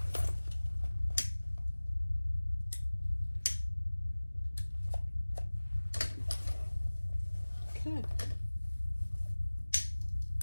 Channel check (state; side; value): inverted; both; correlation -1.00